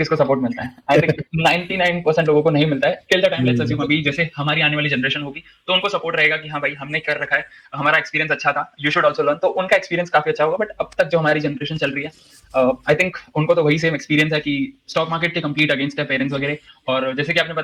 सपोर्ट मिलता है? आई थिंक 99% लोगों को नहीं मिलता है till the time. Let's assume अभी जैसे हमारी आने वाली जनरेशन होगी तो उनको सपोर्ट रहेगा कि हाँ भाई हमने कर रखा है, हमारा एक्सपीरियंस अच्छा था, यू शुड ऑल्सो लर्न. तो उनका एक्सपीरियंस काफी अच्छा होगा. बट अब तक जो हमारी जनरेशन चल रही है, आई थिंक उनको तो वही सेम एक्सपीरियंस है कि स्टॉक मार्केट के कंप्लीट अगेंस्ट है पेरेंट्स वगैरह. और जैसे कि आपने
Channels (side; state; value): both; identical; correlation 1.00